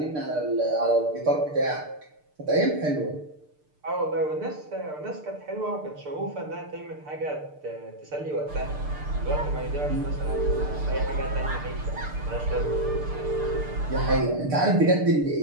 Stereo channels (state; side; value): late; left; 6.7 ms